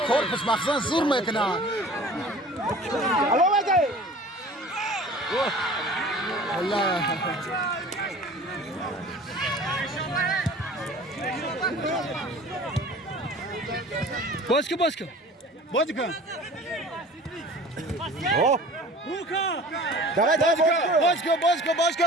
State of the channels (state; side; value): normal; both; correlation 0.44